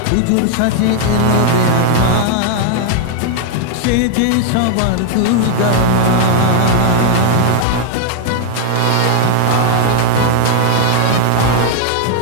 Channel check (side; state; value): both; different; correlation 0.01